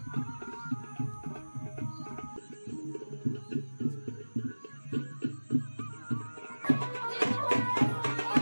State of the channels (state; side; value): inverted; both; correlation -1.00